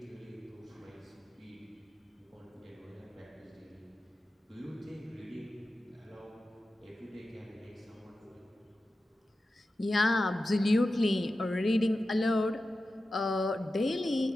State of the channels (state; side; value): normal; both; correlation 0.93